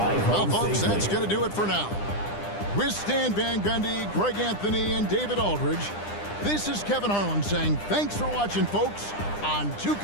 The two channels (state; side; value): late; right; 9.9 ms